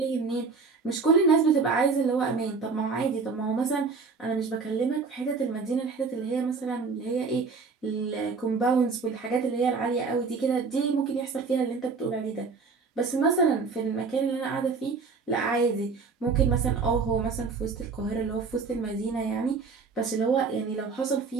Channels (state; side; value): quieter; left; 4.7 dB